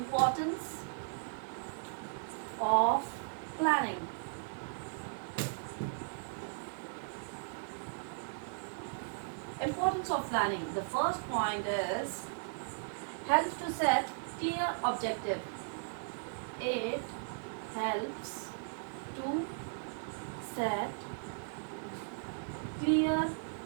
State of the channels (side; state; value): left; silent; digital silence